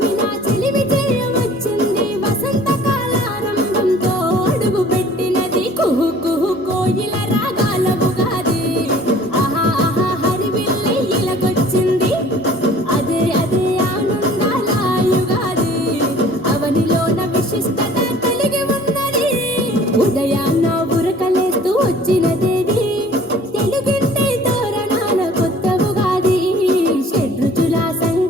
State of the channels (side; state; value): both; normal; correlation 0.50